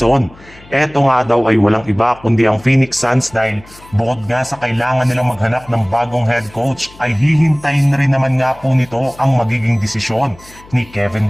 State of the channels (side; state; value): left; noise; hum, 24 dB below the sound